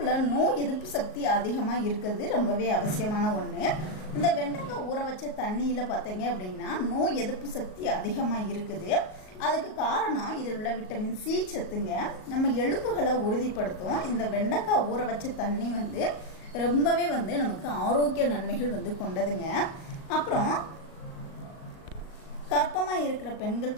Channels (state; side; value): late; right; 38 ms